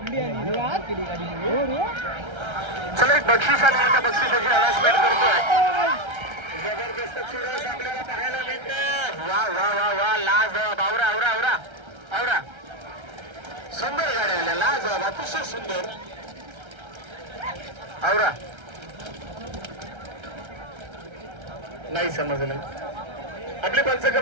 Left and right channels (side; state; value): left; late; 1.3 ms